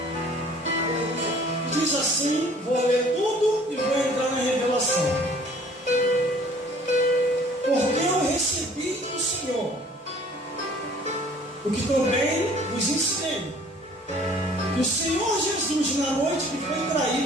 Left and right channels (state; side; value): normal; both; correlation 0.53